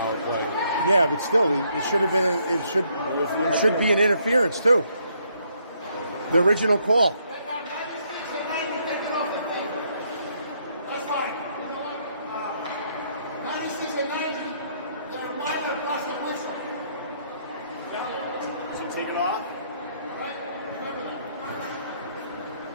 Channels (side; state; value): both; inverted; correlation -0.71